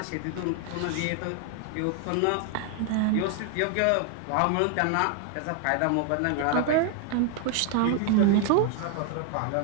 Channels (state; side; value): different; both; correlation 0.00